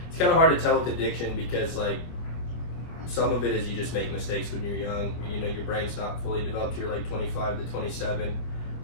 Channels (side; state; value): right; late; 25 ms